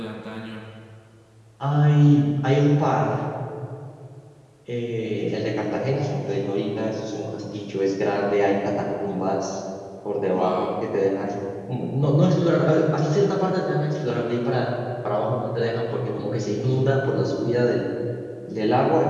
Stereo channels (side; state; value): both; identical; correlation 1.00